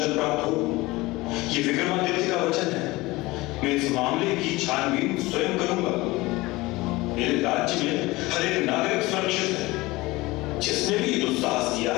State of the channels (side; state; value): right; quieter; 20.9 dB